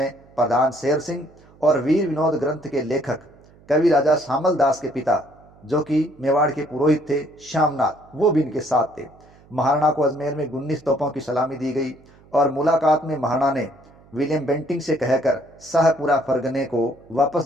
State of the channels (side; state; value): right; noise; hum, 27 dB below the sound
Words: प्रधान शेर सिंह और वीर विनोद ग्रंथ के लेखक कवि राजा श्यामल दास के पिता, जो कि मेवाड़ के पुरोहित थे, श्यामनाथ, वो भी इनके साथ थे। महाराणा को अजमेर में 19 तोपों की सलामी दी गई और मुलाकात में महाराणा ने विलियम बेंटिंग से कहकर शाहपुरा फरगने को वापस